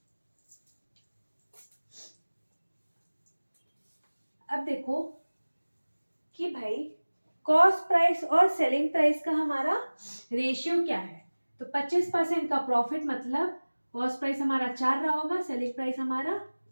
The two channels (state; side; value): inverted; both; correlation -1.00